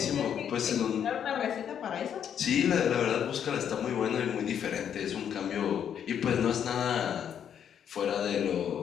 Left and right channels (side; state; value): right; quieter; 8.7 dB